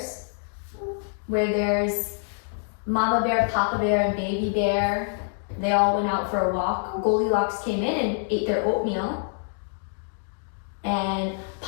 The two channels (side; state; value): right; silent; digital silence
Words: Where there's Mama Bear, Papa Bear, and Baby Bear. They all went out for a walk. Goldilocks came in and ate their oatmeal. And